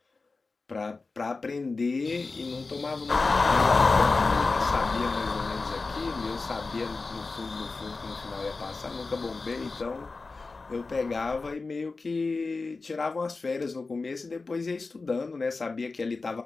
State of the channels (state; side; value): quieter; right; 3.9 dB